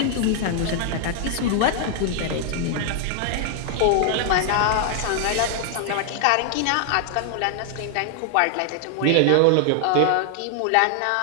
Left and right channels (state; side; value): different; both; correlation 0.00